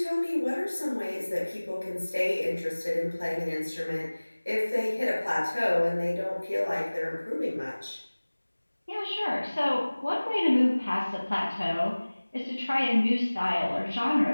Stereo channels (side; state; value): both; inverted; correlation -1.00